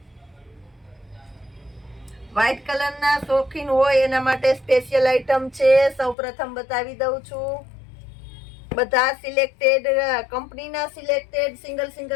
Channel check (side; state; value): right; drops out; at 6.2 s